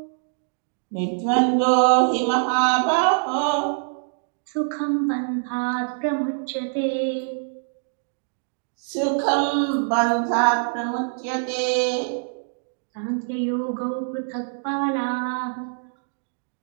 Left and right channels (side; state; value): left; silent; digital silence